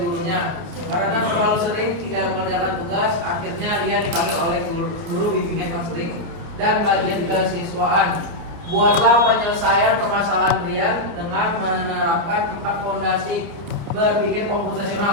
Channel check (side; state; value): left; late; 29 ms